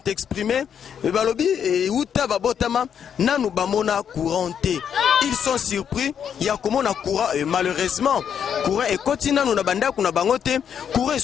exprimés. Balobi et uta babotama nanu bamona couranté. Ils sont surpris. Il y a comment na courant et malheureusement courant et continue nous na banda kuna bangote courant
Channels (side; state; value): right; quieter; 8.2 dB